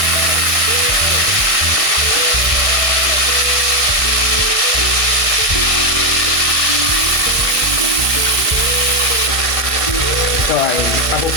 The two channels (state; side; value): late; left; 1.5 ms